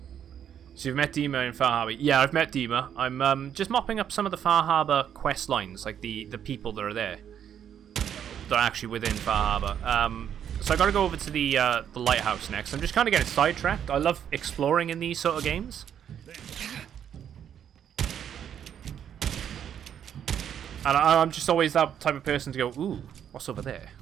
So you've met Dima in Far Harbor. Yeah, I've met Dima. I'm just mopping up some of the Far Harbor quest lines, like the people that are there. That are actually within Far Harbor. So I gotta go over to the lighthouse next. I'm just kind of getting sidetracked. I love exploring in these sort of games. And I'm just always that type of person to go, ooh, what's over there?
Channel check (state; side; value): quieter; left; 9.2 dB